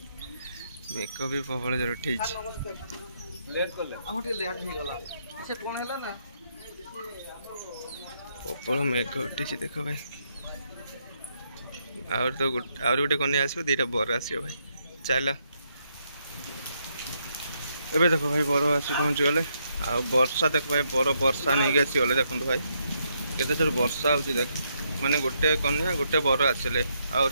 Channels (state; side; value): inverted; both; correlation -0.77